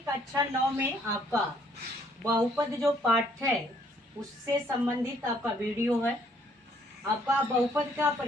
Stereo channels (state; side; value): normal; both; correlation 0.65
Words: कक्षा 9 में आपका बहुपद जो पाठ है उससे संबंधित आपका वीडियो है। आपका बहुपद का